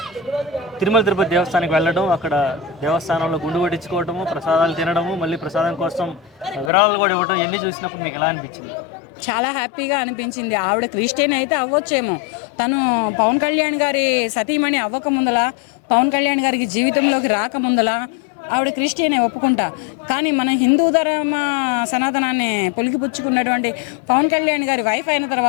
తిరుమల తిరుపతి దేవస్థానానికి వెళ్ళడం, అక్కడ దేవస్థానంలో గుండు కొట్టించుకోవడము, ప్రసాదాలు తినడము, మళ్ళీ ప్రసాదం కోసం విరాళాలు కూడా ఇవ్వడం, ఇవన్నీ చూసినప్పుడు మీకు ఎలా అనిపించింది? చాలా హ్యాపీగా అనిపించింది. ఆవిడ క్రిస్టియన్ అయితే అవ్వచ్చేమో, తను పవన్ కళ్యాణ్ గారి సతీమణి అవ్వక ముందల, పవన్ కళ్యాణ్ గారికి జీవితంలోకి రాకముందల ఆవిడ క్రిస్టియనే ఒప్పుకుంటా. కానీ మన హిందూ ధర్మ సనాతనాన్ని పొలికిపుచ్చుకున్నటువంటి పవన్ కళ్యాణ్ గారి వైఫ్ అయిన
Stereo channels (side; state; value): right; drops out; at 6.7 s